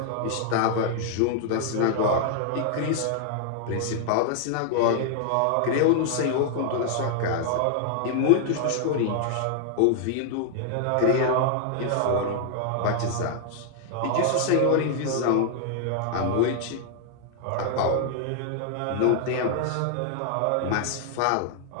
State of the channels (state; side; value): different; both; correlation 0.00